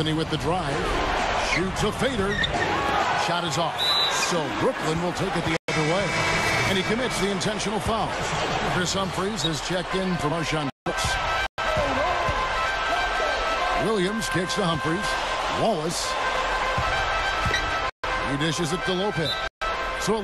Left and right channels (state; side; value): identical; both; correlation 1.00